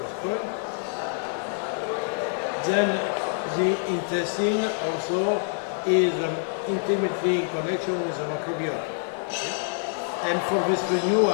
point. Then the intestine also is intimately in connection with the microbiota. Okay? And for this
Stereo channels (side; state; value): right; silent; 57 dB below the other